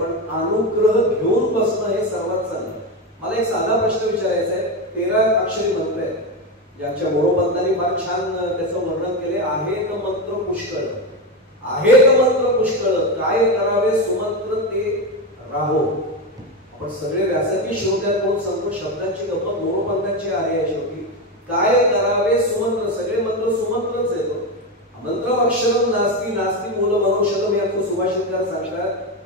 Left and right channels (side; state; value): both; normal; correlation 0.14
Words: अनुग्रह घेऊन बसणं हे सर्वात चांगलं. मला एक साधा प्रश्न विचारायचा आहे. 13 अक्षरी मंत्र आहेत, ज्यांच्या मोरोपंतांनी फार छान त्याचं वर्णन केले. आहेत मंत्र पुष्कळ, आहेत मंत्र पुष्कळ, काय करावे सुमंत्र ते राहो. आपण सगळे व्यासपीठ श्रोत्यांकडून सांगतो, शब्दांची गप्पा मोरोपंतांची आहे. शेवटी काय करावे सुमंत्र, सगळे मंत्र सुमंत्रच येतो. मंत्रम अक्षरम नास्ती नास्ती मूल मनोषदम याचं सुभाषितकार